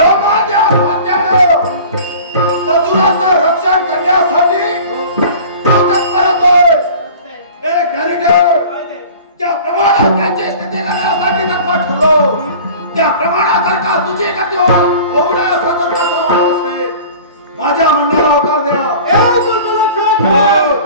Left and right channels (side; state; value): both; inverted; correlation -0.42